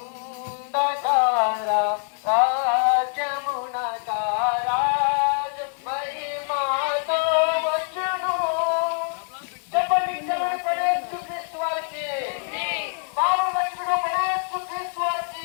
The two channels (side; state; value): right; silent; 62 dB below the other